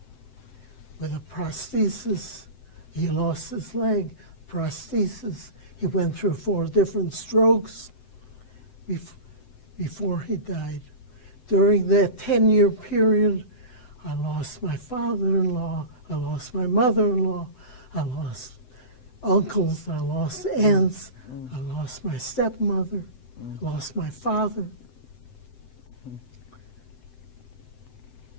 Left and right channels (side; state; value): right; late; 7.8 ms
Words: with a prosthesis. He lost his leg, prosthesis. He went through 4 different strokes before he died. During that 10-year period, I lost my father-in-law, I lost my mother-in-law, I lost uncles, I lost aunts, I lost my stepmother, lost my father.